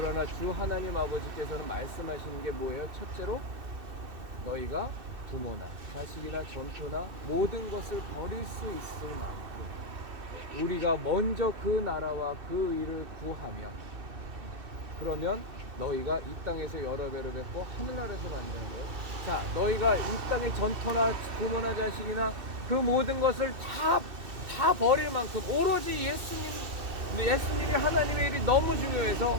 주 하나님 아버지께서는 말씀하시는 게 뭐예요? 첫째로 너희가 부모나 자식이나 전토나 모든 것을 버릴 수 있을 만큼 우리가 먼저 그 나라와 그 의를 구하며 그러면 너희가 이 땅에서 여러 배로 뵙고 하늘나라에서 만드는 거예요. 자, 너희가 이 땅의 전토나 부모나 자식이나 그 모든 것을 다 버릴 만큼 오로지 예수님이 하나님의 일이 너무 중요해서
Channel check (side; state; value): left; late; 2.6 ms